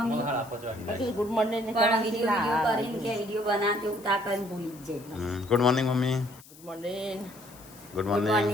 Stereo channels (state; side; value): noise; left; hiss, 22 dB below the sound